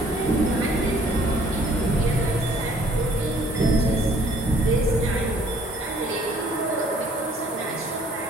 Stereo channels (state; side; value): normal; both; correlation 0.59